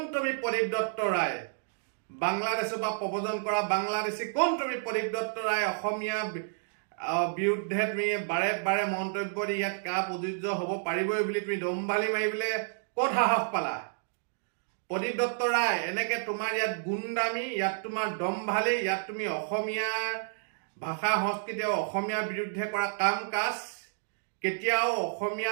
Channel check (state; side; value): silent; left; digital silence